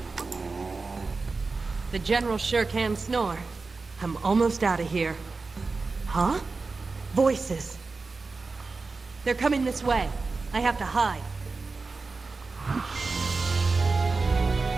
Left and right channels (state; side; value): quieter; left; 4.0 dB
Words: The General sure can snore. I'm almost out of here. Huh? Voices. They're coming this way. I have to hide.